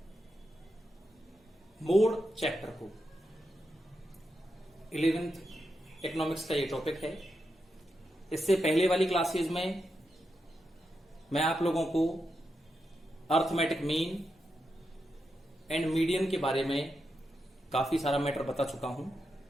मोड चैप्टर को। 11th इकोनॉमिक्स का ये टॉपिक है। इससे पहले वाली क्लासेस में मैं आप लोगों को अर्थमेटिक मीन एंड मीडियन के बारे में काफी सारा मैटर बता चुका हूं।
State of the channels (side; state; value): both; normal; correlation 0.86